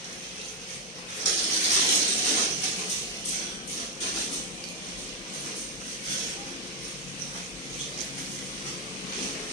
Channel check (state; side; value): normal; both; correlation 0.04